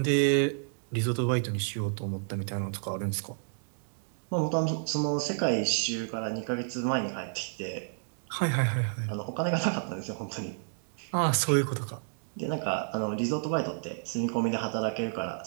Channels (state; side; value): silent; left; digital silence